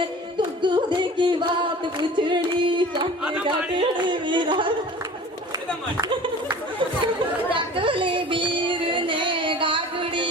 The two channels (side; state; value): both; normal; correlation 0.42